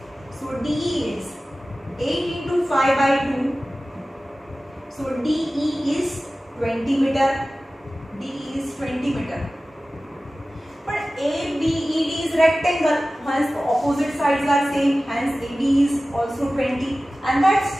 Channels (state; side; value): normal; both; correlation 0.96